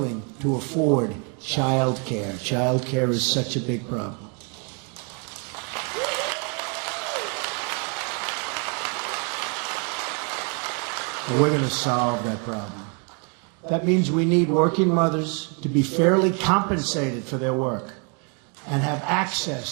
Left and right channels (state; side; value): quieter; left; 36.8 dB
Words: to afford child care. Child care is such a big problem. And we're going to solve that problem. That means we need working mothers to be fairly compensated for their work and have access